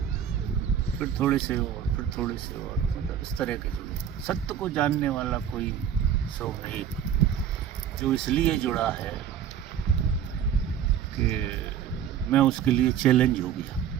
फिर थोड़े से और, फिर थोड़े से और, मतलब इस तरह के जुड़े। सत्य को जानने वाला कोई 100 में 1, जो इसलिए जुड़ा है कि मैं उसके लिए चैलेंज हो गया।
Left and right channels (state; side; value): quieter; left; 9.0 dB